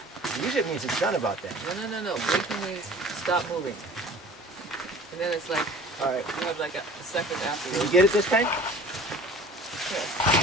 Usually it means it's done about that. no. Blinking means stop moving, and then it's like All right. you have like a second Did you afterwards. get it this time? Yeah.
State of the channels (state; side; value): normal; both; correlation 0.46